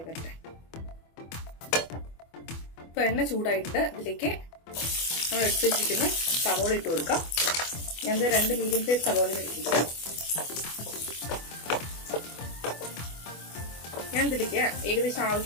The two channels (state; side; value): late; right; 24 ms